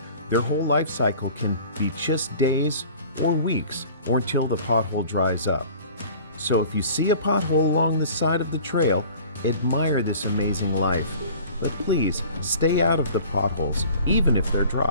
Their whole life cycle can be just days or weeks or until the pothole dries up. So if you see a pothole along the side of the trail, admire this amazing life. But please stay out of the potholes, even if they're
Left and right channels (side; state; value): both; inverted; correlation -0.45